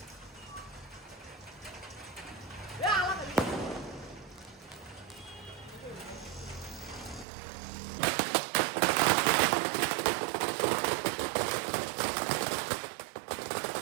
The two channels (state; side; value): drops out; left; at 7.2 s